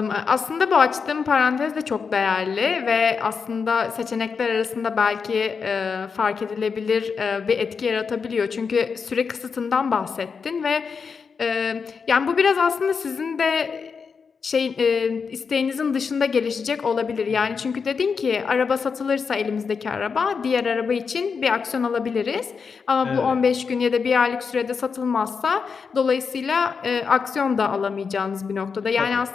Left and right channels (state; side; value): quieter; right; 5.6 dB